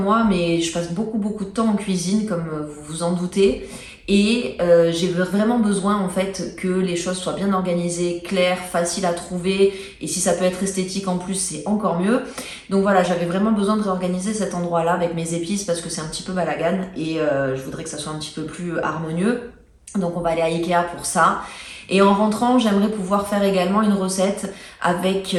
moi, mais je passe beaucoup de temps en cuisine, comme vous vous en doutez. Et j'ai vraiment besoin en fait que les choses soient bien organisées, claires, faciles à trouver. Et si ça peut être esthétique en plus, c'est encore mieux. Donc voilà, j'avais vraiment besoin de réorganiser cet endroit-là avec mes épices parce que c'est un petit peu balagane et je voudrais que ça soit un petit peu plus harmonieux. Donc on va aller à Ikea pour ça. Et en rentrant, j'aimerais pouvoir faire également une recette avec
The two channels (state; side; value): identical; both; correlation 1.00